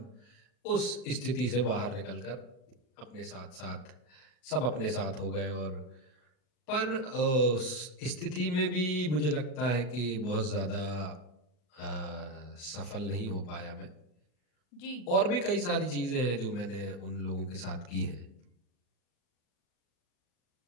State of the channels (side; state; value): right; late; 39 ms